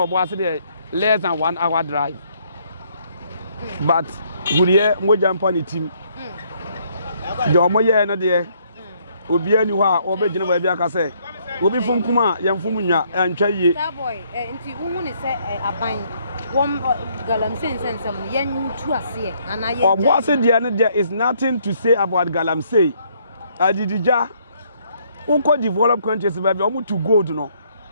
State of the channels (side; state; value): both; inverted; correlation -0.68